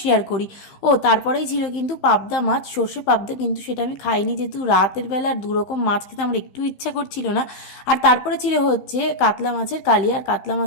শেয়ার করি। ও তারপরেই ছিল কিন্তু পাবদা মাছ, সর্ষে পাবদা, কিন্তু সেটা আমি খাইনি, যেহেতু রাতের বেলা আর দুরকম মাছ খেতে আমার একটু ইচ্ছা করছিল না। আর তারপরে ছিল হচ্ছে কাতলা মাছের কালিয়া, আর কাতলা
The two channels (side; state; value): right; late; 15 ms